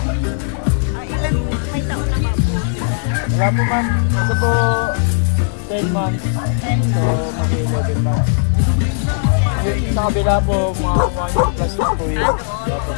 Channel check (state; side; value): silent; right; 58 dB below the other